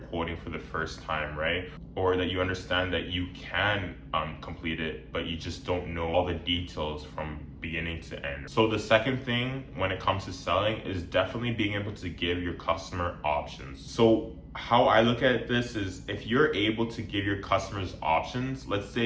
for the first time, right? Or that you understand that you can complete it, but you just don't know all the details from beginning to end. So the second thing when it comes to selling is definitely being able to give your customer options. So how I look at this is, if you're able to give your customers options, let's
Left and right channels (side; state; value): both; identical; correlation 1.00